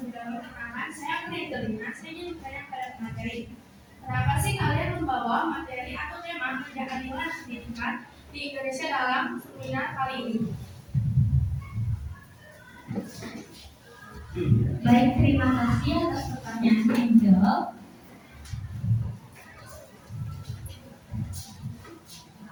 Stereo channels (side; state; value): both; identical; correlation 1.00